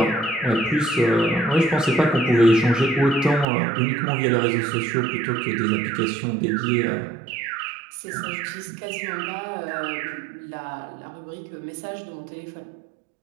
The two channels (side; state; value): left; drops out; at 3.5 s